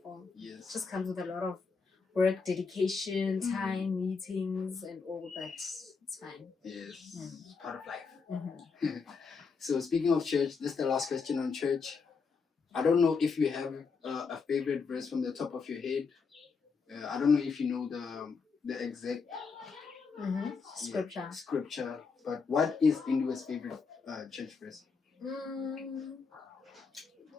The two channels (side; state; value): right; quieter; 5.1 dB